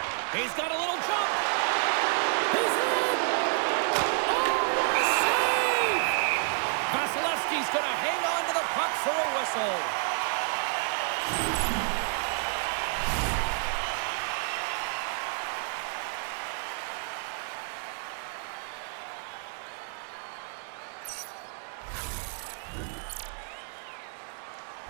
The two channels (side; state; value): left; silent; 58 dB below the other